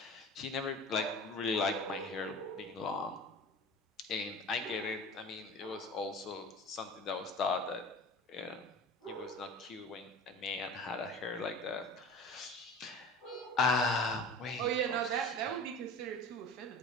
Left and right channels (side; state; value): both; normal; correlation 0.36